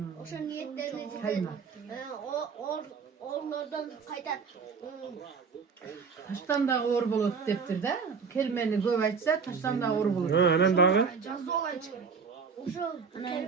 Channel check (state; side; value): quieter; left; 5.6 dB